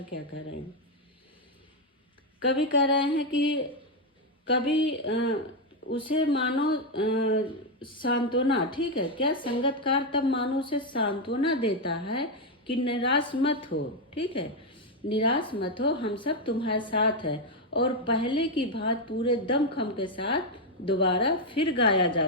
क्या कह रहे हैं, कवि कह रहे हैं कि कभी उसे मानो सांत्वना, ठीक है क्या, संगतकार तब मानो उसे सांत्वना देता है कि निराश मत हो, ठीक है, निराश मत हो, हम सब तुम्हारे साथ है, और पहले की बात पूरे दमखम के साथ दोबारा फिर गाया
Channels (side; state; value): both; normal; correlation 0.04